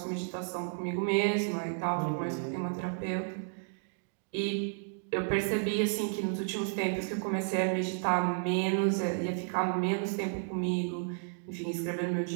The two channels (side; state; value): left; silent; digital silence